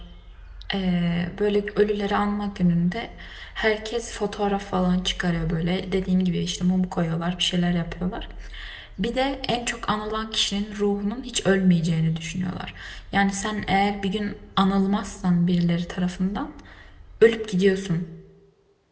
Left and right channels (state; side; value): identical; both; correlation 1.00